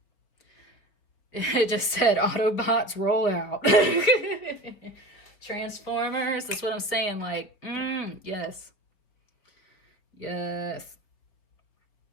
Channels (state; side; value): late; right; 4.9 ms